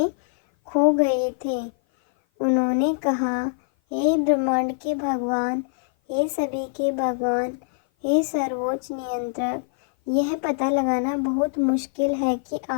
खो गए थे। उन्होंने कहा, हे ब्रह्मांड के भगवान, हे सभी के भगवान, हे सर्वोच्च नियंत्रक, यह पता लगाना बहुत मुश्किल है कि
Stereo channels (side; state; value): right; silent; 56 dB below the other